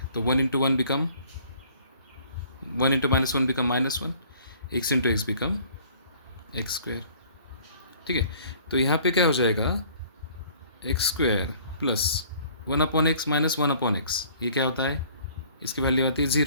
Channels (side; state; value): both; inverted; correlation -0.54